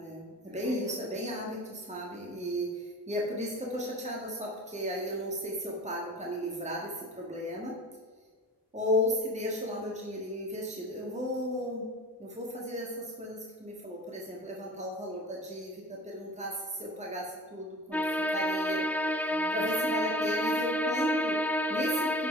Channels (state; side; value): normal; both; correlation 0.40